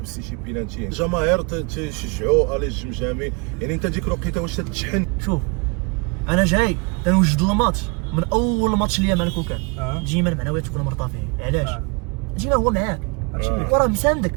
شي بينالتي، الجماهير تشجعوا الي الجمجامي، يعني انت ديك الوقيته واش تتشحن؟ شوف انا جاي تنوجد الماتش من اول ماتش ليا مع الكوكان. ديما المعنويات تكون مرتفعين. علاش؟ ديما هو معاك وراه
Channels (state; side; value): quieter; left; 31.6 dB